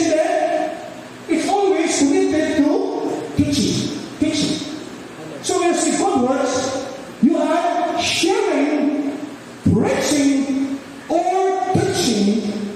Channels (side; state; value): both; identical; correlation 1.00